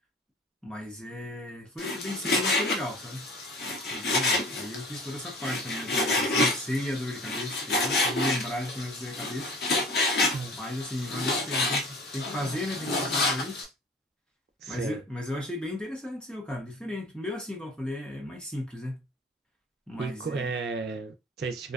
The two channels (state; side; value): normal; both; correlation 0.44